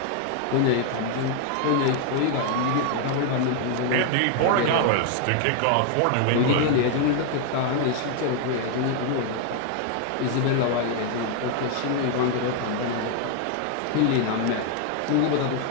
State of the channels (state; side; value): different; both; correlation 0.00